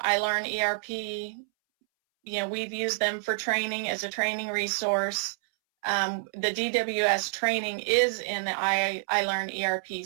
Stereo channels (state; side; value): silent; left; 59 dB below the other